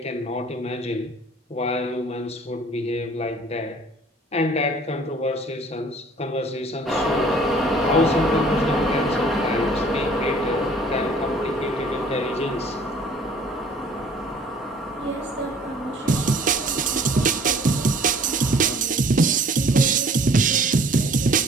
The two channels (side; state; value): both; normal; correlation 0.52